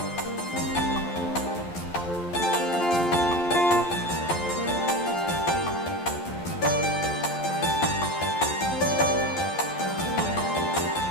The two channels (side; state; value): right; late; 11 ms